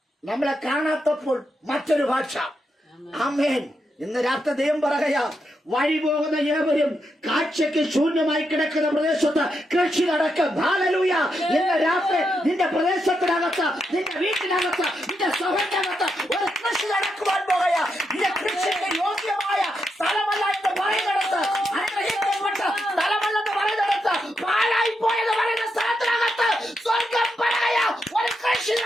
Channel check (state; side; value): normal; both; correlation 0.83